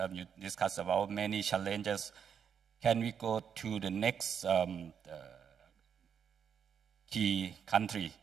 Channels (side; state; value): left; quieter; 7.6 dB